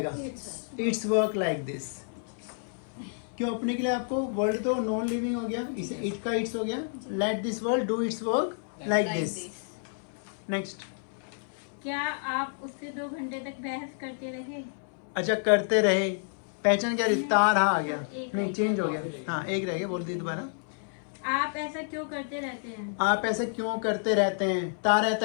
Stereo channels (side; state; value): right; silent; 58 dB below the other